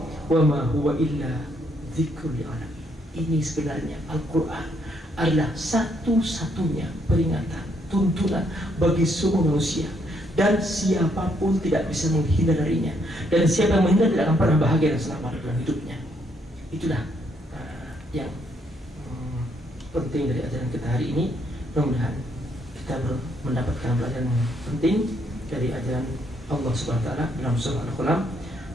wa ma huwa illa dzikrul lil alamin. Ini sebenarnya Al-Quran adalah satu-satunya peringatan, tuntunan bagi semua manusia, dan siapapun tidak bisa menghindar darinya, dan siapa yang menghindar tidak akan pernah bahagia dan selamat dalam hidupnya. Itulah yang penting dari ajaran kita hari ini. Mudah-mudahan kita mendapatkan pelajaran yang penting dari ajaran Allah Subhanahu wa taala dalam surah Al-Qalam,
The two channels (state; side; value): normal; both; correlation 0.72